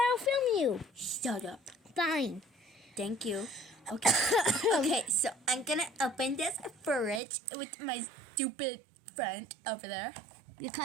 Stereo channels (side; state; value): left; drops out; at 7.2 s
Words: film you. Shut up. Fine. Thank you. Okay. Okay, so I'm gonna open this fridge with my stupid friend over there. Your